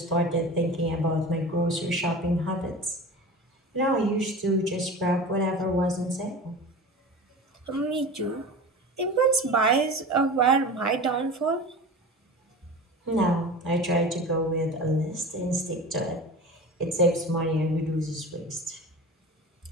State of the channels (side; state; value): both; normal; correlation 0.33